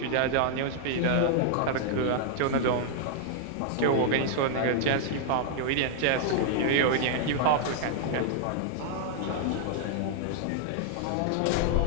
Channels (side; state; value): both; different; correlation 0.00